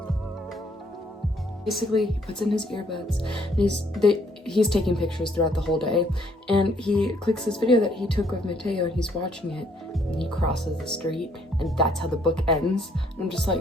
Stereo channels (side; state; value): both; normal; correlation 0.66